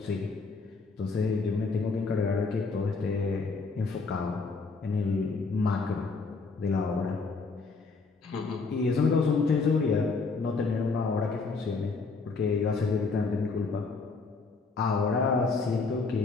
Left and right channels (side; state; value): right; quieter; 4.3 dB